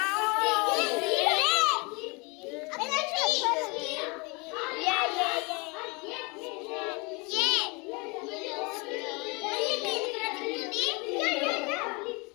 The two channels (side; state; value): right; quieter; 28.6 dB